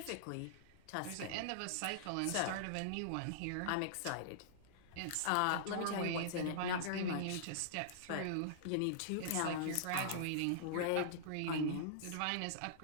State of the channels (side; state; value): both; different; correlation -0.02